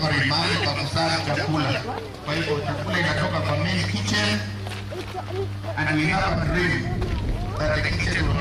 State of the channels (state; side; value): identical; both; correlation 1.00